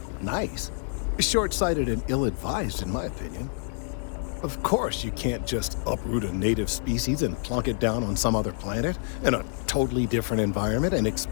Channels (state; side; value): silent; right; digital silence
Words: Nice. Short-sighted and ill-advised, in my opinion. Of course, you can't just uproot a native species and plunk it down on some other planet in a totally different environment and